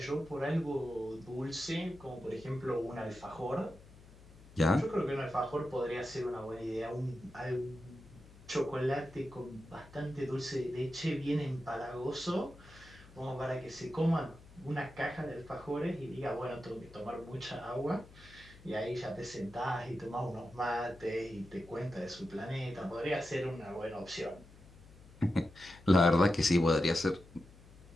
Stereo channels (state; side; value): noise; left; hum, 21 dB below the sound